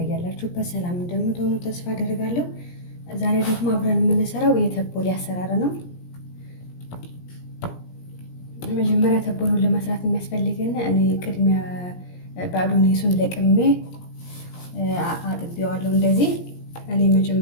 ሰላም እንደምትሆኑ ተስፋ አደርጋለሁ። ዛሬ ደግሞ አብረን የምንሰራው የተቦሌ አሰራር ነው። መጀመሪያ ተቦሎን ለመስራት የሚያስፈልገን እኔ ቅድሚያ ባዶኔሱን ለቅሜ አጥቤዋለሁ። እንደዚህ እኔ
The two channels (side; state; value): right; late; 17 ms